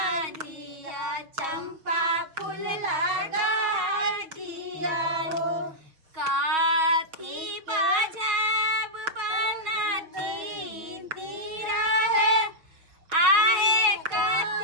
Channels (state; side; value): late; left; 6.3 ms